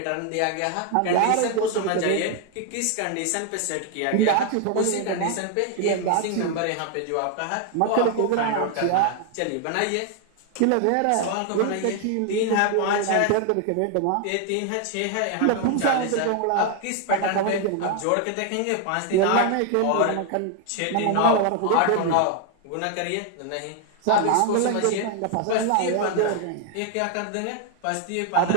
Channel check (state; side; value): different; both; correlation 0.00